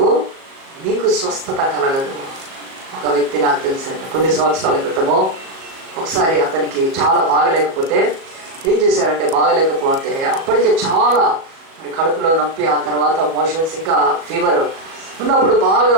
మీకు స్వస్థత కలగదు. ఒక వ్యక్తి నాకు తెలిసింది, కొన్ని సంవత్సరాల క్రితము ఒకసారి అతనికి చాలా బాగలేకపోతే ఏం చేశారంటే, బాగలేకపోతే అప్పటికే చాలా మరి కడుపులో నొప్పి, ఆ తర్వాత మోషన్స్, ఇంకా ఫీవర్ ఉన్నప్పుడు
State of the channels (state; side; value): late; left; 37 ms